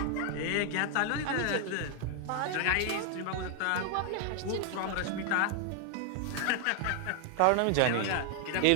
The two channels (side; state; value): both; different; correlation 0.00